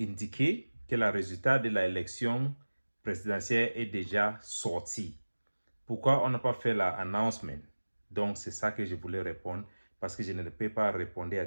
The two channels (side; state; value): both; inverted; correlation -1.00